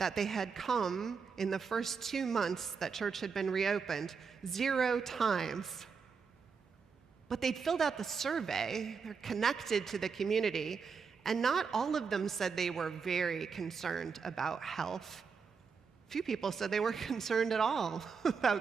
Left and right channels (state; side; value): quieter; left; 5.7 dB